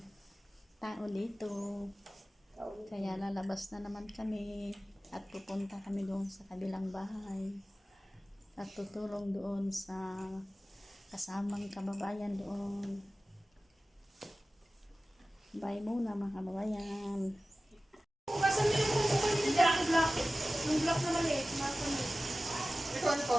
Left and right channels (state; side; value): normal; both; correlation 0.96